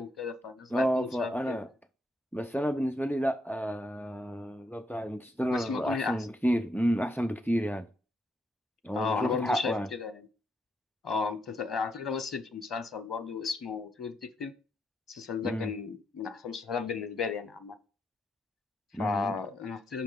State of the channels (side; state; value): both; normal; correlation 0.78